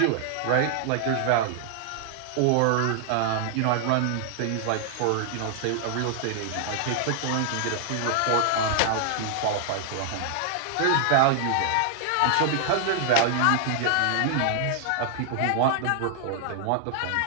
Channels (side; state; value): both; different; correlation 0.00